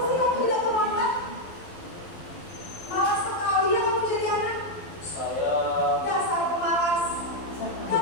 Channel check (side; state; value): right; late; 12 ms